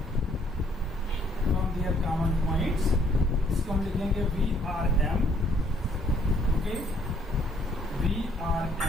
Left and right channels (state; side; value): normal; both; correlation 0.65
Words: फ्रॉम देयर कॉमन पॉइंट्स। इसको हम लिखेंगे Vrm। Okay,